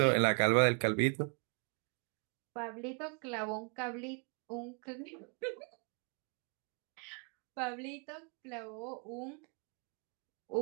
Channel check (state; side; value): quieter; left; 38.3 dB